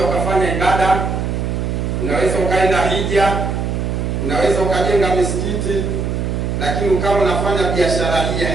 ukafanya ibada, unaweza ukaenda hija, unaweza ukajenga misikiti, lakini ukawa unafanya biashara hii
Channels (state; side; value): noise; right; hum, 1 dB below the sound